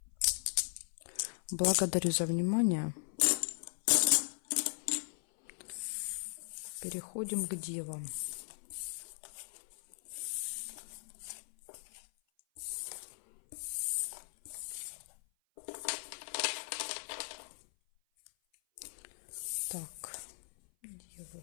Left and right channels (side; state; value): right; silent; 52 dB below the other